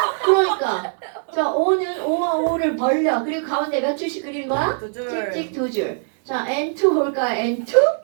그러니까 자 O는 O와 O를 벌려. 그리고 가운데 몇 줄씩 그리는 거야? 두 줄. 찍찍 두 줄. 자 N2 볼까?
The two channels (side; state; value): left; silent; digital silence